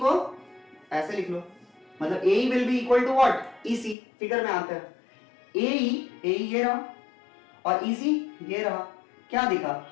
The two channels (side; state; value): right; drops out; at 4.0 s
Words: ऐसे लिख लो, मतलब AE will be equal to what, EC. Figure में आता है एई ये रहा और ईसी ये रहा। क्या दिखा,